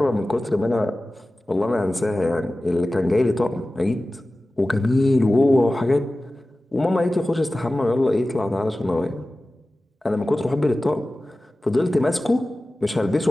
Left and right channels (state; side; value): normal; both; correlation 0.96